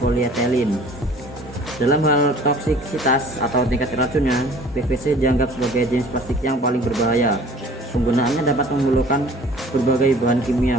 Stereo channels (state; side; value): normal; both; correlation 0.49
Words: Dalam hal toksisitas atau tingkat racunnya, PVC dianggap sebagai jenis plastik yang paling berbahaya. Penggunaannya dapat memerlukan berbagai bahan kimia